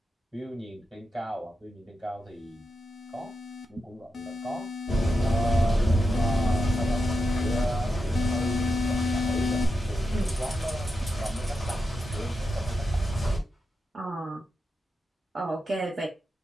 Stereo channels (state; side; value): normal; both; correlation 0.88